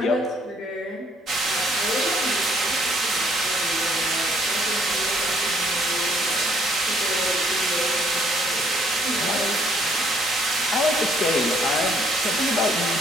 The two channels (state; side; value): normal; both; correlation 0.65